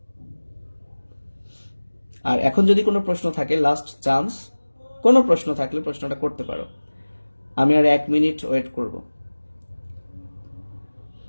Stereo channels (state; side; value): inverted; both; correlation -1.00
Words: আর এখন যদি কোনো প্রশ্ন থাকে, লাস্ট চান্স, কোনো প্রশ্ন থাকলে প্রশ্নটা করতে পারো। আমি আর 1 মিনিট ওয়েট করব।